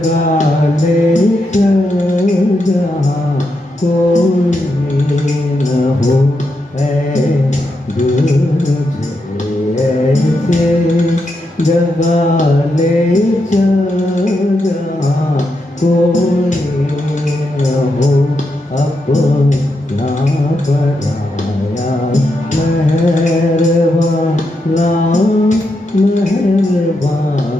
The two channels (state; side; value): normal; both; correlation 0.83